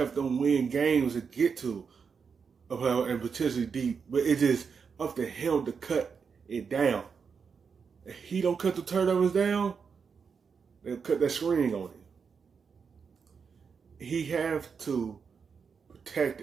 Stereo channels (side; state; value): left; quieter; 5.9 dB